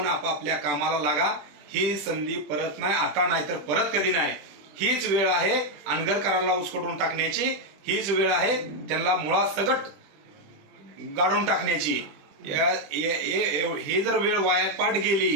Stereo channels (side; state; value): left; late; 20 ms